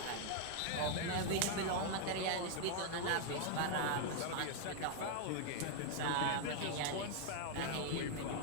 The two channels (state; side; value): different; both; correlation 0.00